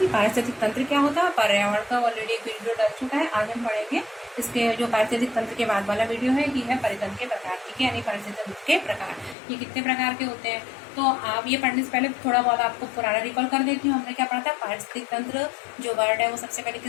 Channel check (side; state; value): right; drops out; at 9.3 s